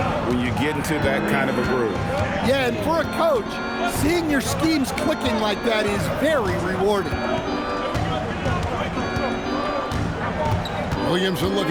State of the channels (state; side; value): identical; both; correlation 1.00